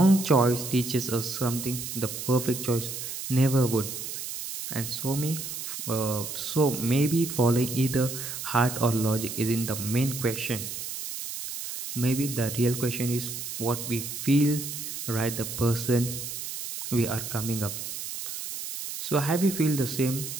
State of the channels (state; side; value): noise; right; hiss, 7 dB below the sound